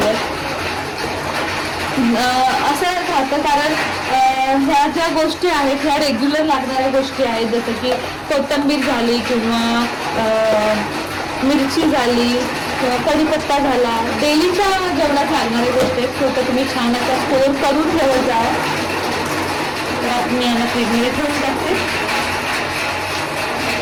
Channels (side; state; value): both; identical; correlation 1.00